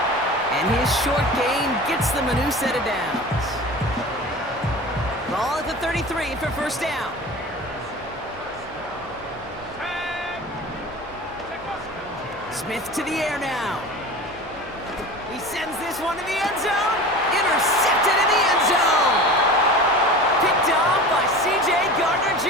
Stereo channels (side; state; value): left; noise; hum, 23 dB below the sound